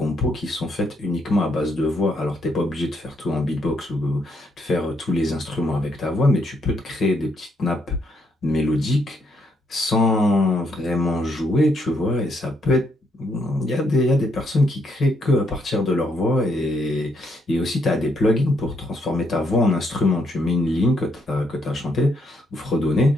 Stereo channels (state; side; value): normal; both; correlation 0.75